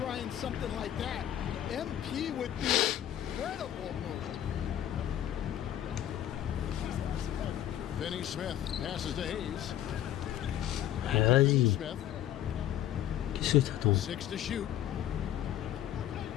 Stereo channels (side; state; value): right; quieter; 11.6 dB